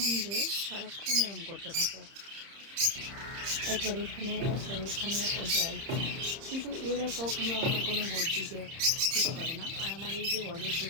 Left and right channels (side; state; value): left; late; 30 ms